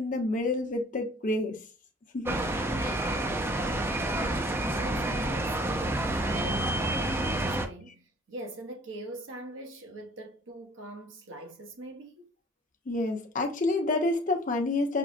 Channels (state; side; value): normal; both; correlation 0.53